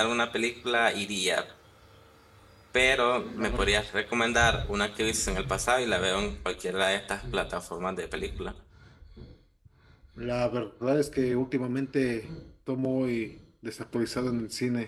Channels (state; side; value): identical; both; correlation 1.00